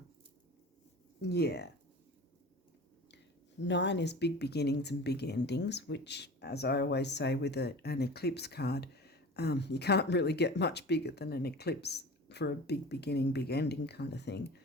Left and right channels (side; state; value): both; normal; correlation 0.37